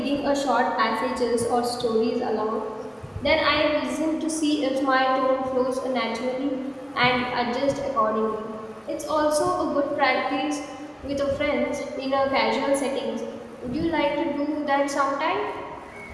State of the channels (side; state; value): both; identical; correlation 1.00